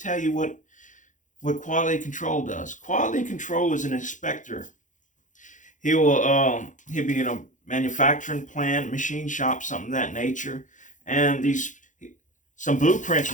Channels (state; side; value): late; right; 0.37 ms